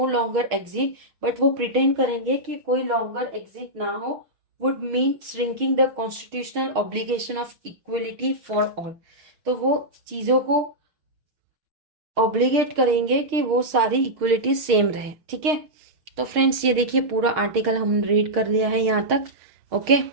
longer exit, but वो प्रिटेंड करेंगे कि कोई लॉन्गर एग्जिट ना हो, would mean shrinking the constitutional obligation of equality for all, तो वो चीजों को ऑब्लिगेट करेंगे कि वो सारी इक्वलिटी सेम रहे, ठीक है। तो फ्रेंड्स ये देखिए पूरा आर्टिकल हम रीड कर लिया है यहाँ तक, ओके।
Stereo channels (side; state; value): left; late; 6.5 ms